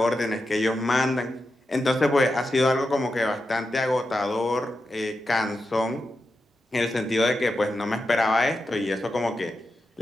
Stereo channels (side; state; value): both; normal; correlation 0.88